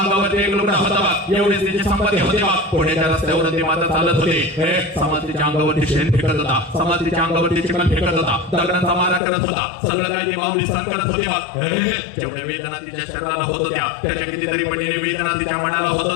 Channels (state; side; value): drops out; right; at 9.2 s